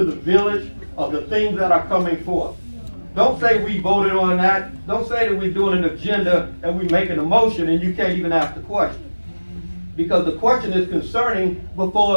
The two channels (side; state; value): both; inverted; correlation -1.00